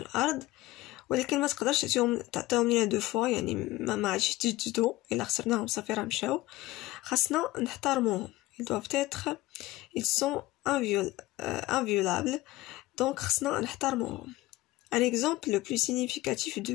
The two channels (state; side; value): quieter; right; 18.0 dB